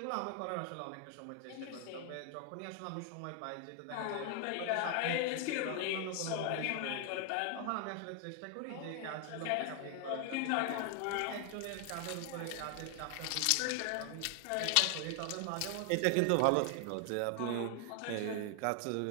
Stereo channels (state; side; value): different; both; correlation 0.00